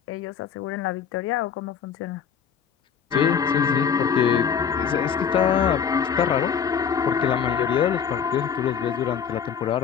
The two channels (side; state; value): right; quieter; 7.4 dB